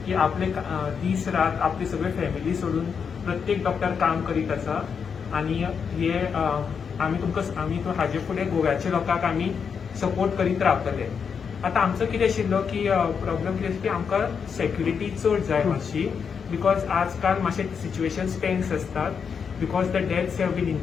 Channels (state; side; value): quieter; right; 6.4 dB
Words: की आपले दीस रात आपली सगळी फॅमिली सोडून प्रत्येक डॉक्टर काम करीत आसा आणि हे आमी तो हाजे फुडें गोव्याच्या लोकांक आमी सपोर्ट करीत रावतले. आतां आमचो कितें आशिल्लो की प्रॉब्लम कितें की आमकां सेक्युरिटी चड जाय मातशी, बिकॉज आजकाल मातशे सिच्युएशन टेन्स असतात, because the deaths have been